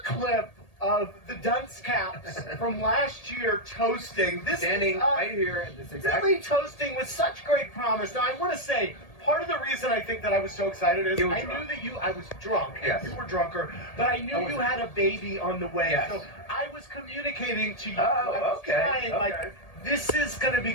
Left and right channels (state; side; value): late; right; 1.8 ms